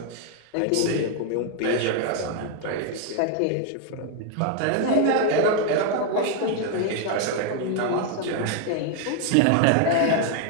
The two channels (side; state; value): both; different; correlation 0.00